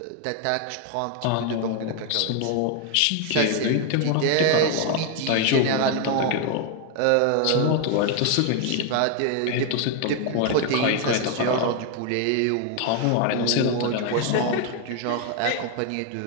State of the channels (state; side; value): different; both; correlation 0.01